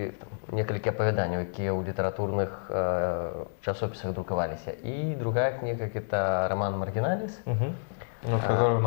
несколько опавяданняў, якія ў літаратурных часописах друкаваліся. И другая книга – это роман «Маргиналис». Который у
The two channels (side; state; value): right; silent; digital silence